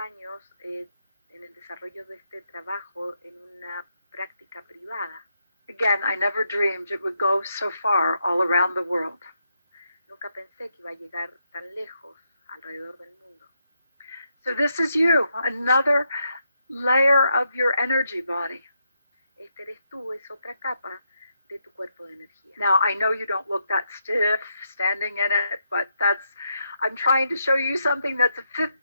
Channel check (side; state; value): both; inverted; correlation -0.80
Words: en el desarrollo de este trabajo en una práctica privada. Again, I never dreamed it would go so far all around the world. Nunca pensé que iba a llegar tan lejos alrededor del mundo. So this is you, another layer of your energy body. Este eres tú, es otra capa de tu cuerpo de energía. Now, I know you don't look that stiff standing in it, but I'm trying to show you something that's a fifth